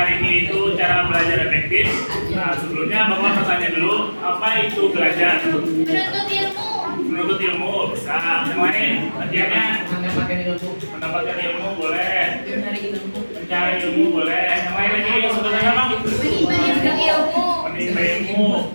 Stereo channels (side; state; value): both; inverted; correlation -1.00